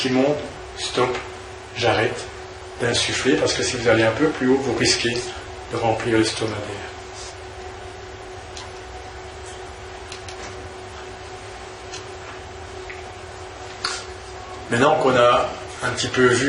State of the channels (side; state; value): both; identical; correlation 1.00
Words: monte, stop, j'arrête d'insuffler parce que si vous allez un peu plus haut, vous risquez de remplir l'estomac d'air. Maintenant qu'on a un petit peu